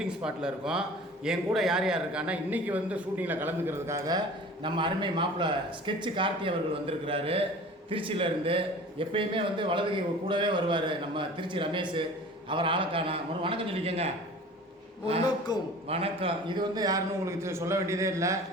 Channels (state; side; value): normal; both; correlation 0.42